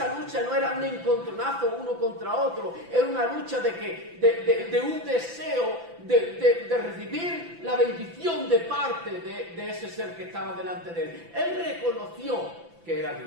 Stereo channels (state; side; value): late; left; 5.9 ms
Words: lucha no era un encontronazo uno contra otro, era una lucha de un deseo de recibir la bendición de parte de ese ser que estaba delante de él. Él reconoció que era